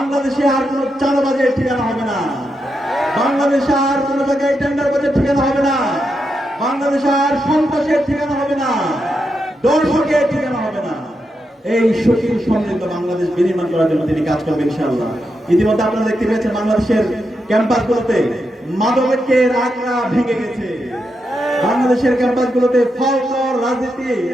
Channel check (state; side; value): normal; both; correlation 0.85